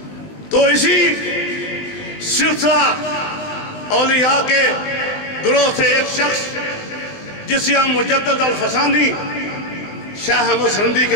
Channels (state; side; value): late; right; 19 ms